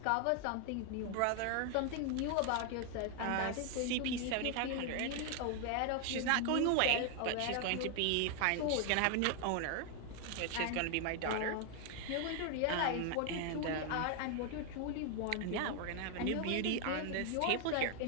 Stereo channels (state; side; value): different; both; correlation 0.00